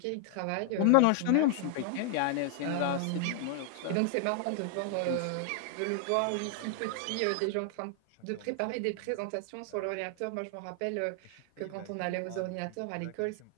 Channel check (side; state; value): both; different; correlation 0.00